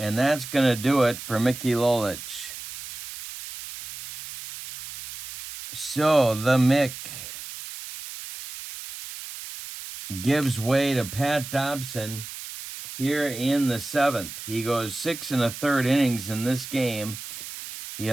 that's going to do it for Mickey Lolich. So the Mick gives way to Pat Dobson here in the 7th. He goes 6 1/3 innings in this game. He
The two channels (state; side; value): noise; right; hiss, 11 dB below the sound